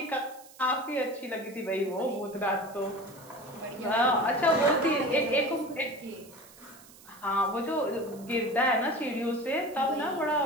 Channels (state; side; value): noise; right; hiss, 22 dB below the sound